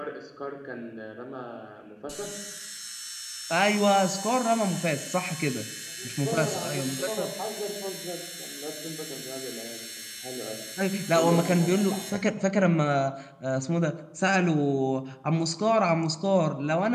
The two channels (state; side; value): identical; both; correlation 1.00